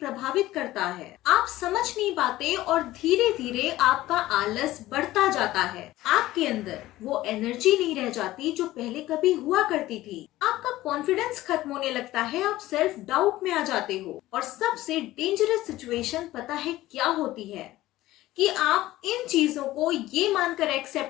करता है। आप समझ नहीं पाते और धीरे धीरे आपका आलस बढ़ता जाता है। आपके अंदर वो एनर्जी नहीं रह जाती जो पहले कभी हुआ करती थी। आपका कॉन्फिडेंस खत्म होने लगता है, आप सेल्फ डाउट में आ जाते हो। और सबसे डेंजरस सिचुएशन पता है क्या होती है? कि आप इन चीजों को ये मानकर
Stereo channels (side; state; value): right; quieter; 16.3 dB